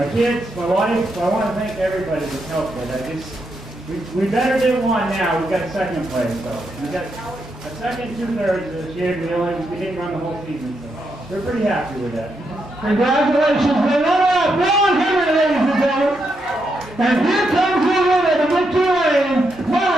kids, my wife. So I want to thank everybody that's helped with it. We better than one now. We got 2nd place, so we got a 2nd, 2/3 this year. We didn't run the whole season, so we're pretty happy with that. Congratulations, the runner-up, Ron Henry, ladies and gentlemen. And here comes the winner, the victory lane,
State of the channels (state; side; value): normal; both; correlation 0.81